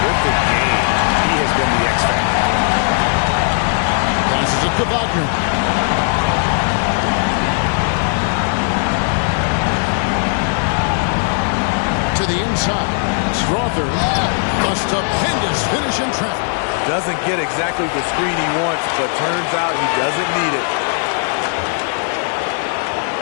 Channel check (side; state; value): right; silent; 56 dB below the other